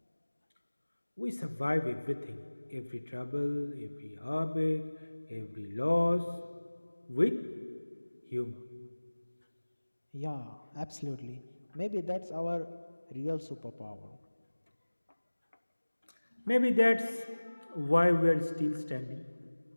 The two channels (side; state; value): both; inverted; correlation -1.00